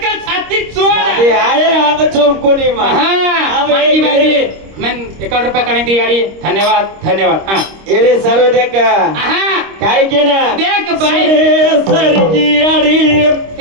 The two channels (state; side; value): late; left; 26 ms